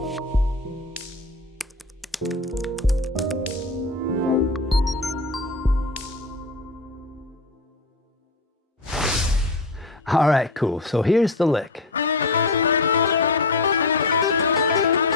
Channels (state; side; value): quieter; right; 3.0 dB